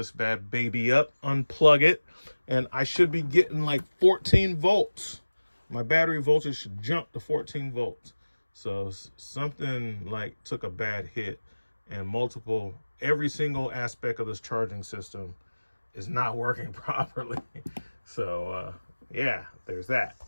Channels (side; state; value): both; inverted; correlation -1.00